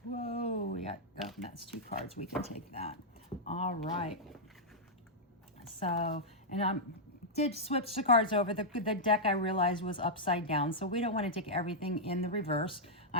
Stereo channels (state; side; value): normal; both; correlation -0.07